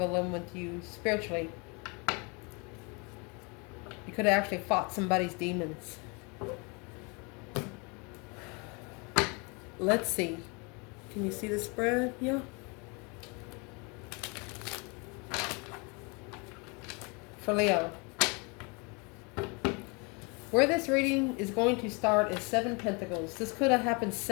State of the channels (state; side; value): quieter; right; 30.8 dB